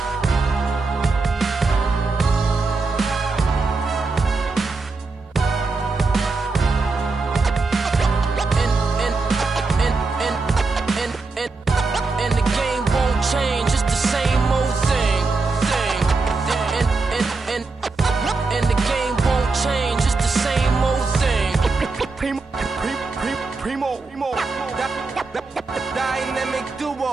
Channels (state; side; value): quieter; left; 3.9 dB